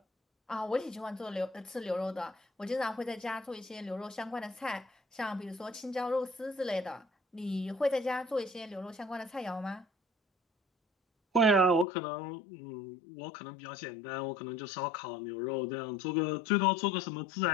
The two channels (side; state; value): right; drops out; at 11.9 s